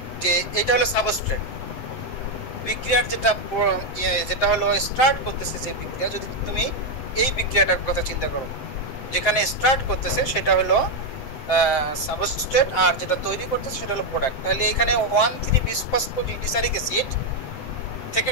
যে এটা হলো সাবস্ট্রেট বিক্রিয়ার যেটা হলো স্টার্ট করতেছে যে বিক্রিয়া। যদি তুমি এই বিক্রিয়াটার কথা চিন্তা করো, যেখানে স্টার্ট করতেছে সেটা হলো সাবস্ট্রেট আর যেটা তৈরি করতেছে সেটা হলো প্রোডাক্ট। তাহলে এখানে 1,3-বিসফসফোগ্লিসারিক অ্যাসিড থেকে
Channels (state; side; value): late; right; 7.6 ms